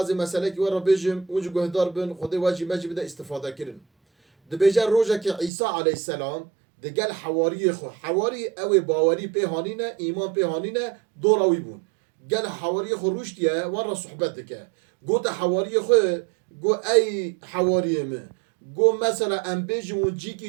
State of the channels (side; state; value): left; drops out; at 5.5 s